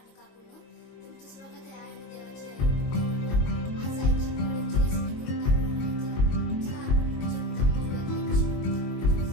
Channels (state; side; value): late; right; 22 ms